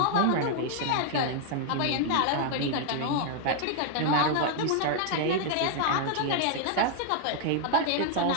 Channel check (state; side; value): different; both; correlation 0.00